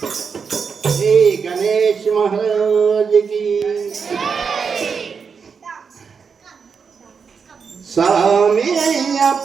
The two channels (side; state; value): left; quieter; 5.9 dB